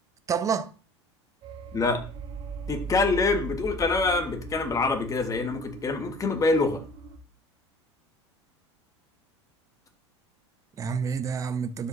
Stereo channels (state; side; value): normal; both; correlation 0.49